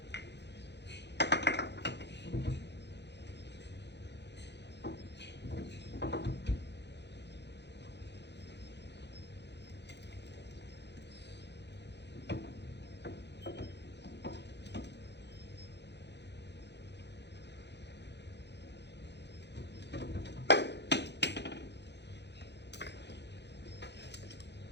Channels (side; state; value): right; late; 0.50 ms